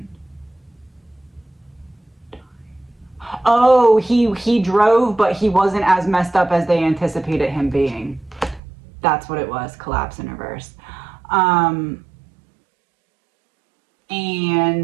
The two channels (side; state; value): left; drops out; at 8.6 s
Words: Oh, he drove, but he wasn't as messed up as they anticipated him being. That's what it was. Collapse in reverse. And